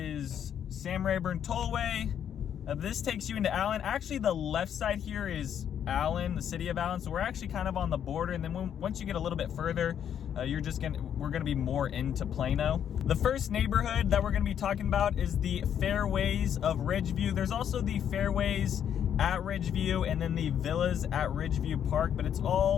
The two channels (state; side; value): quieter; right; 9.1 dB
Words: Sam Rayburn Tollway. This takes you into Allen. Actually, the left side here is Allen, the city of Allen. So we're actually kind of on the border. And then once you get a little bit further, we're gonna be more into Plano. The first neighborhood that we're gonna be talking about is the Fairways of Ridgeview. There's also the Fairways at Ridgeview and then the Villas at Ridgeview Park, but it's